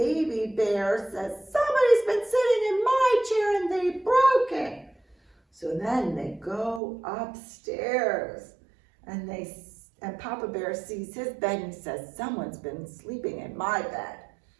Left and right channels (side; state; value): left; drops out; at 6.8 s